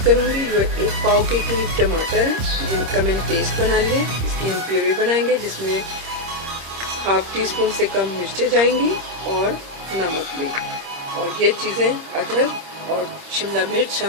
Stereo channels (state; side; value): late; left; 26 ms